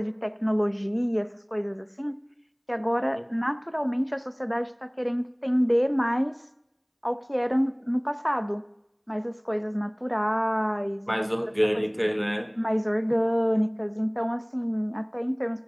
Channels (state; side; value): identical; both; correlation 1.00